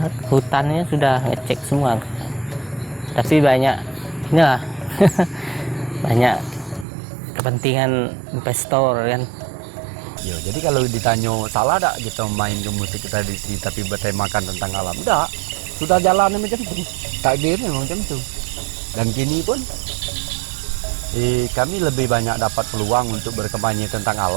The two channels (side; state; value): left; drops out; at 6.9 s